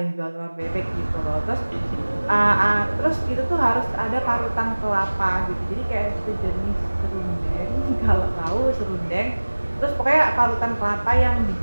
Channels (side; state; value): both; inverted; correlation -1.00